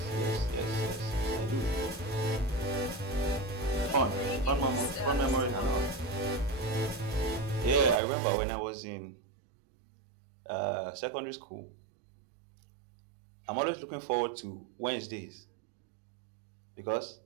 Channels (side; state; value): left; drops out; at 8.0 s